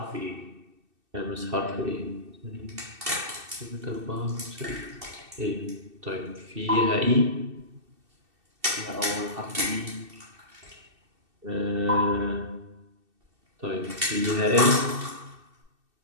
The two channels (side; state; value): left; late; 2.7 ms